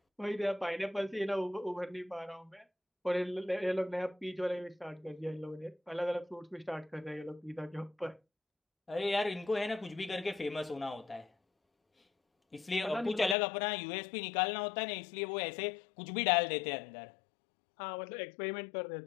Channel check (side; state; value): right; drops out; at 13.4 s